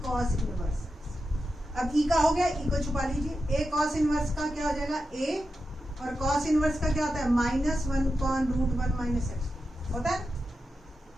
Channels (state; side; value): normal; both; correlation 0.89